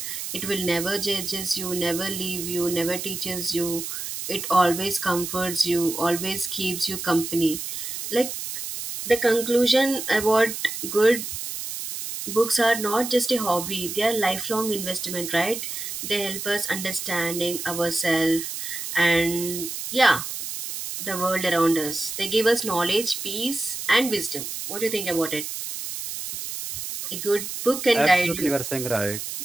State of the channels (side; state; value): right; noise; hiss, 6 dB below the sound